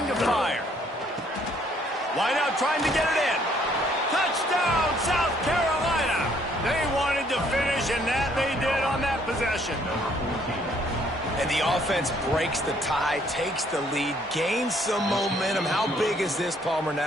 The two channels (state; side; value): normal; both; correlation 0.65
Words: to fire. Wide out trying to get it in. Touchdown, South Carolina. They wanted to finish, and that they did on that possession. And the offense breaks the tie, takes the lead, gains some momentum. How big is this, Palmer,